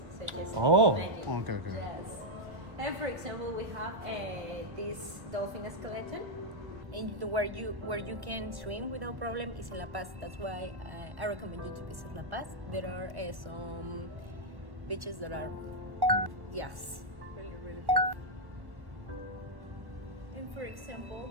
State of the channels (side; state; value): left; late; 1.2 ms